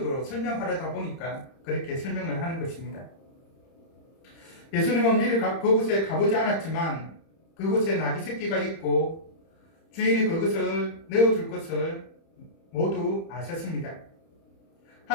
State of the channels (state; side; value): late; right; 30 ms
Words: 설명하려다 보니까 그렇게 설명을 하는 것입니다. 예수님은 미리 그곳에 가보지 않았지만 그곳에 나귀 새끼가 있고 주인이 그것을 내어줄 것을 모두 아셨습니다.